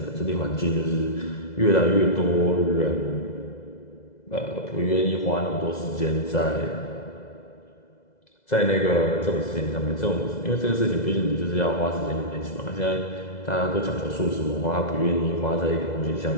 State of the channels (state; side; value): late; right; 2.0 ms